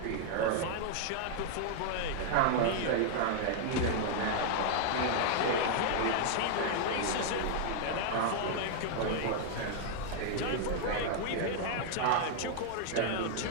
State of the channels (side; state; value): both; different; correlation 0.00